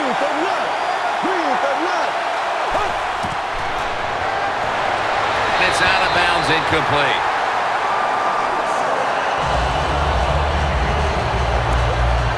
It's out of bounds, incomplete.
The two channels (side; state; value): both; identical; correlation 1.00